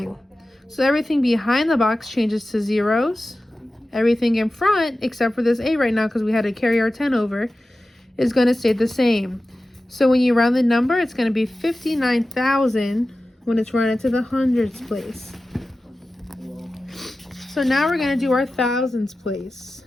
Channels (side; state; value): both; normal; correlation 0.95